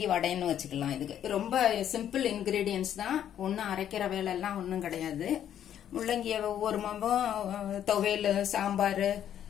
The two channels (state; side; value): quieter; right; 10.2 dB